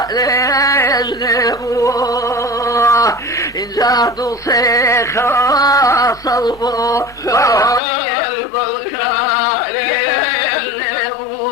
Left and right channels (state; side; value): drops out; right; at 7.8 s